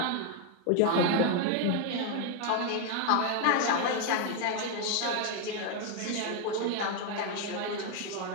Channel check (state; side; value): different; both; correlation 0.01